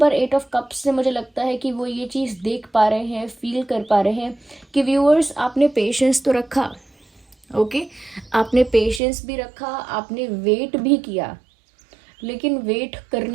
पर 8 ऑफ कप्स से मुझे लगता है कि वो ये चीज़ देख पा रहे हैं, फील कर पा रहे हैं कि व्यूअर्स आपने पेशेंस तो रखा, ओके, आपने पेशेंस भी रखा, आपने वेट भी किया, लेकिन वेट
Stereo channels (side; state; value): left; drops out; at 9.0 s